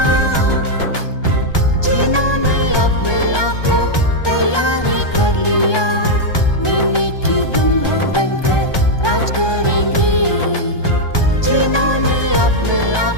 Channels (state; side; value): late; right; 1.2 ms